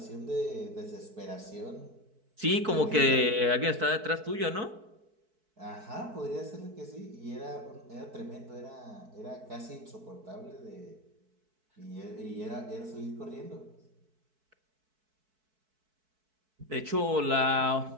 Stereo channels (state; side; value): late; left; 4.6 ms